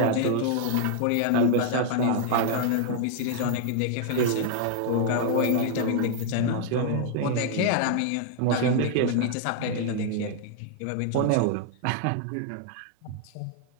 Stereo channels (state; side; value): different; both; correlation 0.00